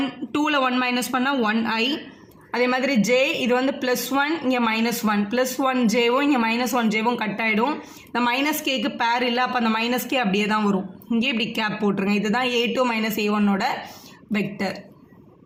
2ல் 1 மைனஸ் பண்ணால் 1i அதே மாதிரி j இது வந்து +1 இங்கே -1 +1jவும் இங்கே -1jவும் கட் ஆகிடும் இந்த -kக்கு பேர் இல்லை அப்போ அந்த -k அப்படியே தான் வரும் இங்கே இப்படி கேப் போட்டுருங்க இதுதான் A2 - A1ஓட வெக்டர்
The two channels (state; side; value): identical; both; correlation 1.00